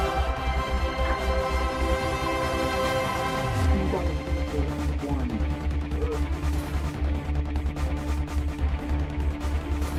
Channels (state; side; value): identical; both; correlation 1.00